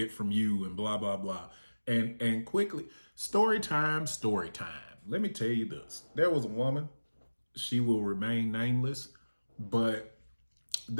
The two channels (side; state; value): both; inverted; correlation -1.00